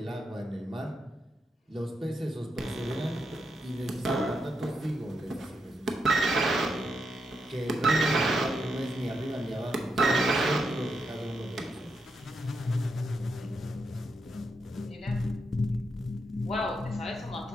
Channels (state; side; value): normal; both; correlation 0.83